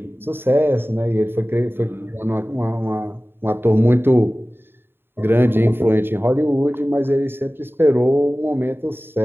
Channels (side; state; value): left; late; 0.11 ms